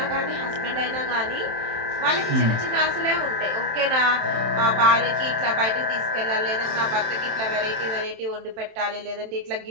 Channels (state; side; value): late; left; 27 ms